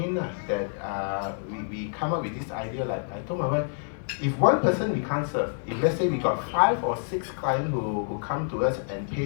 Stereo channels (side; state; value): right; silent; digital silence